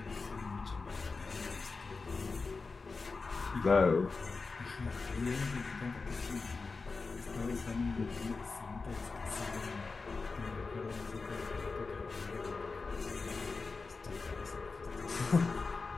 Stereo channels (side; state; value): right; quieter; 4.2 dB